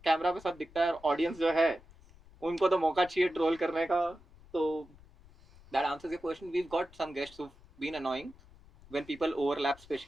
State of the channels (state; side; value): noise; left; rumble, 24 dB below the sound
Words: Camera पे सब दिखता है, ऑडियंस जो है उनको तो मौका चाहिए ट्रोल करने का. तो that answers your question. We've got some guests who've been annoying when people overlap,